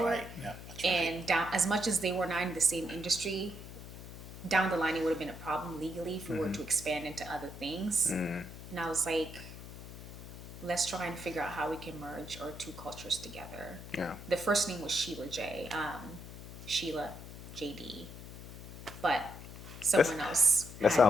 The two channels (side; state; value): left; noise; hum, 13 dB below the sound